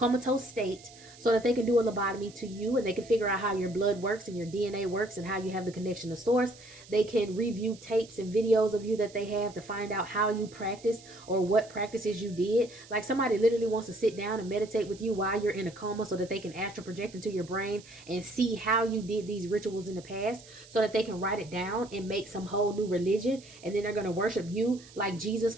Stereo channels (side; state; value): right; noise; hiss, 21 dB below the sound